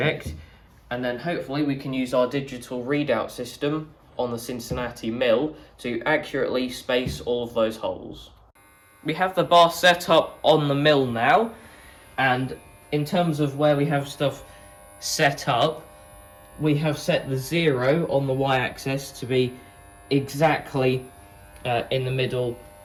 and then hopefully we can use our digital readout system on the Cincinnati mill to accurately space all of those holes. We have the bar set up on the mill now, and in terms of where we have stuff set up, we have set the 0 on the y-axis to be exactly in the middle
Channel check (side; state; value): both; identical; correlation 1.00